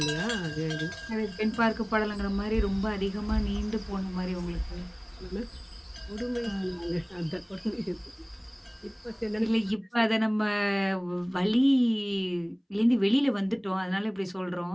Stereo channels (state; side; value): identical; both; correlation 1.00